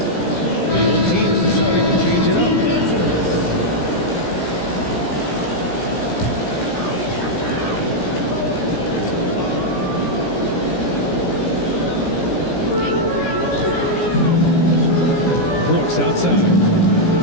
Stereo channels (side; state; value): right; late; 17 ms